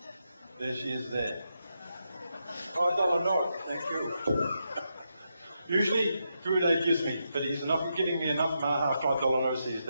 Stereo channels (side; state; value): both; inverted; correlation -0.83